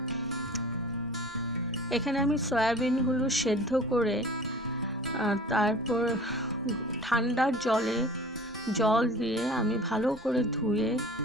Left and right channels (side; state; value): both; normal; correlation 0.42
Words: এখানে আমি সয়াবিনগুলো সেদ্ধ করে তারপর ঠান্ডা জল দিয়ে আমি ভালো করে ধুয়ে